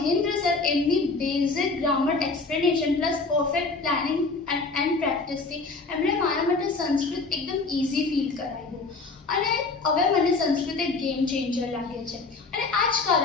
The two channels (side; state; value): right; quieter; 3.8 dB